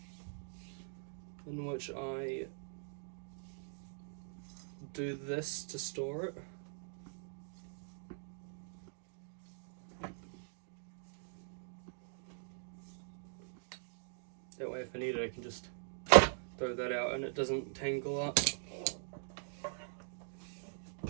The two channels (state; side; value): silent; left; digital silence